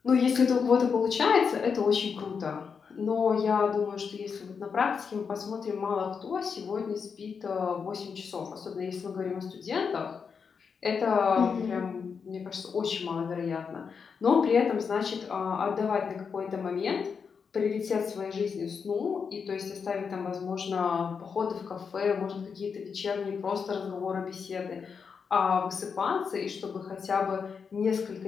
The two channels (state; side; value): quieter; right; 6.0 dB